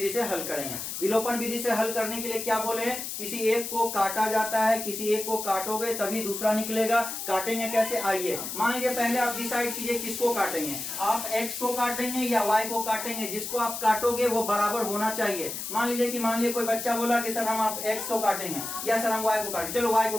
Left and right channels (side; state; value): left; noise; hiss, 6 dB below the sound